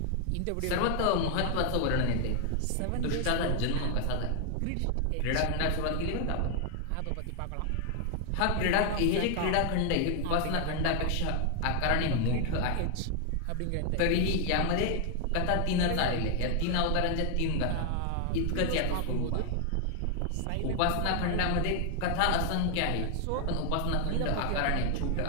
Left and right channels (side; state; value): both; different; correlation 0.00